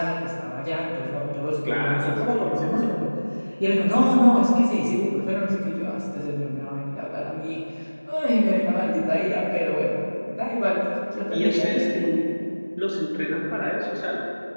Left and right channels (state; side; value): inverted; both; correlation -1.00